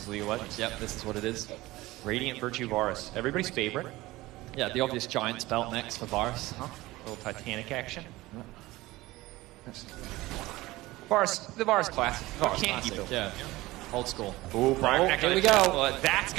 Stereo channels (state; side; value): quieter; left; 19.0 dB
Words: League of Legends. Yep, this is what it is. Radiant Virtue Varus, everybody's favorite. Yeah, the obvious Giants belt next for Varus. A little Titanic action. The Varus classic. Can't keep it. Yeah. Old school. Ooh, Brian, here we go. That's